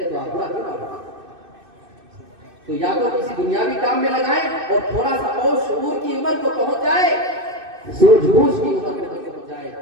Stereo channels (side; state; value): left; late; 2.6 ms